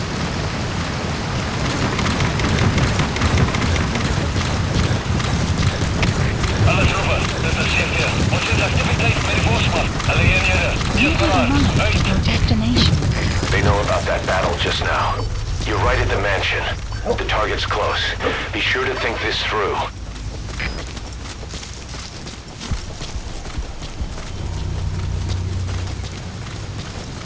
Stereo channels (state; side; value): identical; both; correlation 1.00